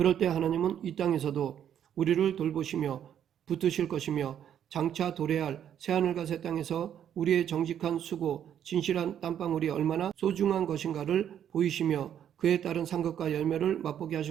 때 하나님은 이 땅에서도 우리를 돌보시며 붙드실 것이며 장차 도래할 새하늘과 새 땅에서 우리의 정직한 수고, 진실한 땀방울이 얼마나 소중한 것인가를 보이시며 그에 따른 상급과 열매를 맛보게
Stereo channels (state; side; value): quieter; left; 9.7 dB